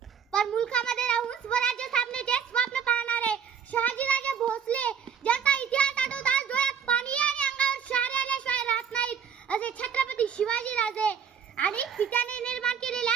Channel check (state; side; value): quieter; left; 7.5 dB